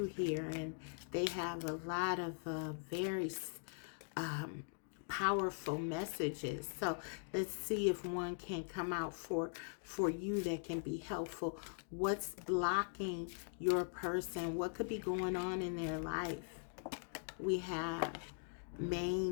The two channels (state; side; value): silent; right; digital silence